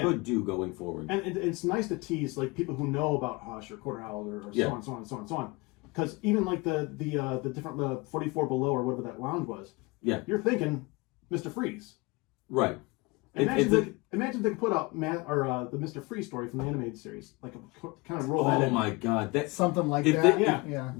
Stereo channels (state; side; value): quieter; right; 25.3 dB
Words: do going forward. And it's nice to tease like people who know about Hush or Quarter Owl or so on, so on, so on, so on. Because even like the different 44 Below or whatever that lounge was, you're thinking Mr. Freeze. Right. Imagine if they could put out the Mr. Freeze story from the animated series, like kind of roll that in. Oh my God, that's something like